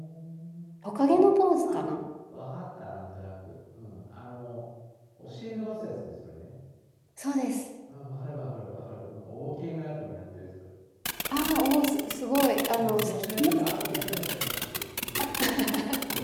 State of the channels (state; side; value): identical; both; correlation 1.00